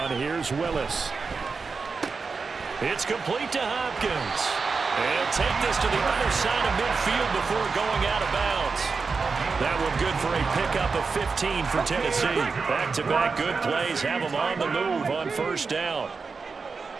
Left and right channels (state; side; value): quieter; left; 4.7 dB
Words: here's Willis. It's complete to Hopkins. And take this to the other side of midfield before going out of bounds. That one good for a pickup of 15 for Tennessee. Back-to-back good plays have them on the move on 1st down.